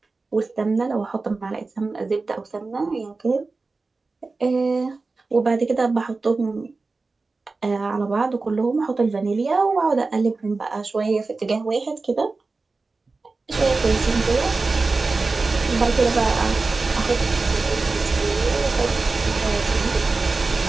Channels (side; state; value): left; quieter; 3.8 dB